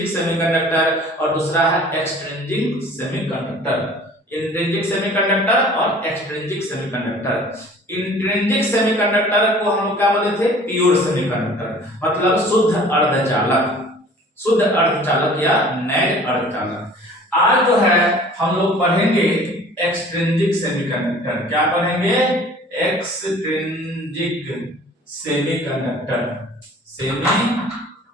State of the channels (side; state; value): both; normal; correlation 0.48